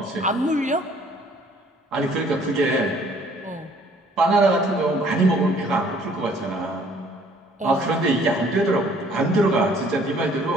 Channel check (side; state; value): both; normal; correlation 0.59